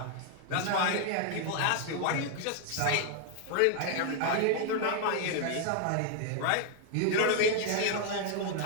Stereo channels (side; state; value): both; different; correlation 0.00